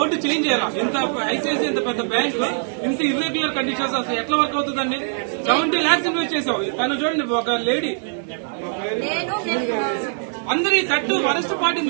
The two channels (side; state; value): left; silent; 64 dB below the other